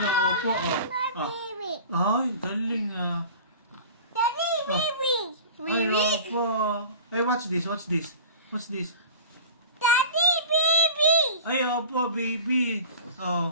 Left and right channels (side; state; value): both; inverted; correlation -0.39